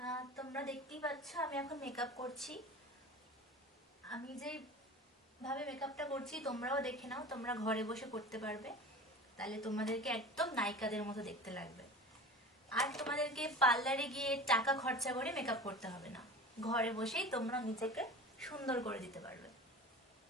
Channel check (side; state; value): both; normal; correlation 0.36